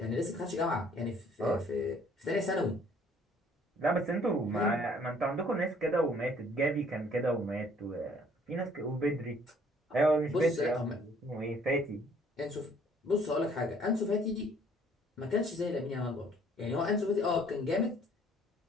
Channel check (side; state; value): both; normal; correlation 0.59